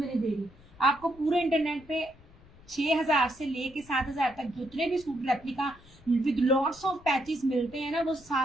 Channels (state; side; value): noise; left; rumble, 24 dB below the sound